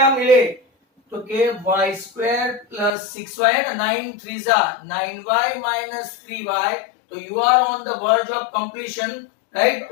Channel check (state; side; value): drops out; right; at 2.9 s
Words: मिले, तो के y स्क्वायर प्लस 6y है ना, 9 3 जा 9y माइनस 3y, तो you are on the verge of completion, right?